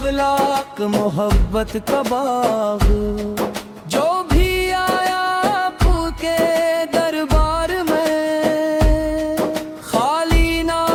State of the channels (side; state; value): both; identical; correlation 1.00